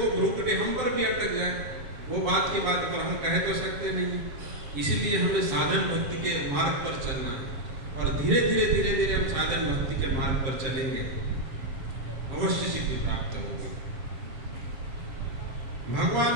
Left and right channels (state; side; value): late; left; 7.8 ms